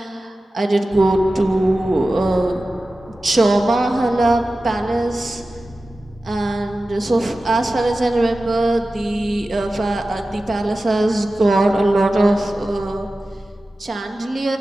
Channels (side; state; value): both; normal; correlation 0.95